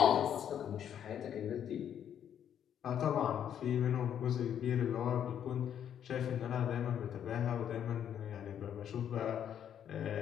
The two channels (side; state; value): right; quieter; 9.4 dB